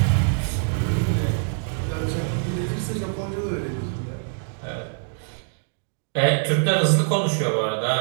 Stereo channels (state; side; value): silent; left; digital silence